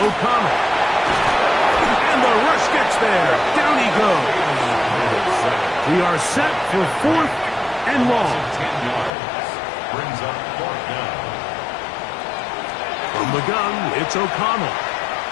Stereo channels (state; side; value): drops out; right; at 9.1 s